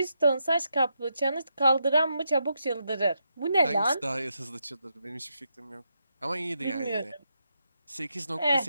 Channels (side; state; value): both; inverted; correlation -0.82